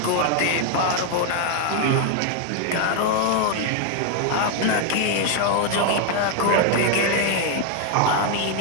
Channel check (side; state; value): both; different; correlation 0.00